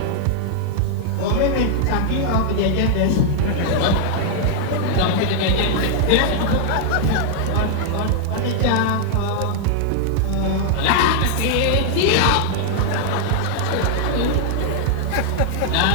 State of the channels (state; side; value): different; both; correlation 0.00